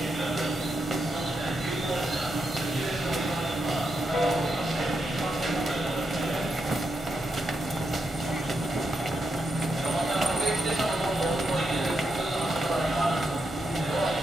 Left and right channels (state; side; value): normal; both; correlation 0.83